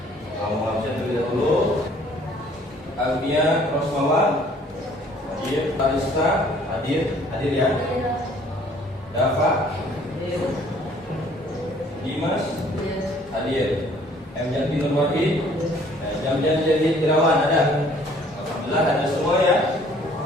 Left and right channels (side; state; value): both; normal; correlation 0.57